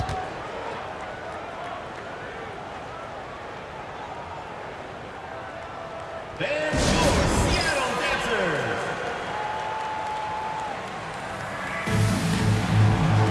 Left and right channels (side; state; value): both; identical; correlation 1.00